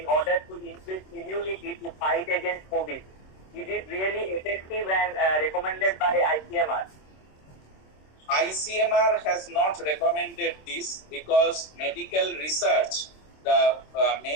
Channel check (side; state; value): right; late; 26 ms